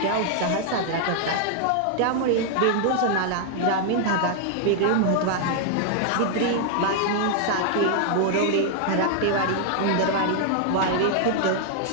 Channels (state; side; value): different; both; correlation 0.00